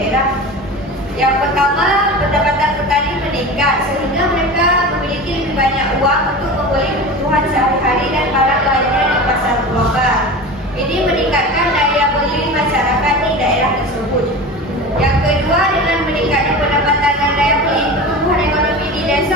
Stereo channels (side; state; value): both; normal; correlation 0.31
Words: Yang pertama, pendapatan petani meningkat sehingga mereka memiliki lebih banyak uang untuk membeli kebutuhan sehari-hari dan barang lainnya di pasar global. Ini meningkatkan daya beli masyarakat di daerah tersebut. Yang kedua, dengan meningkatnya pendapatan dan daya beli, pertumbuhan ekonomi di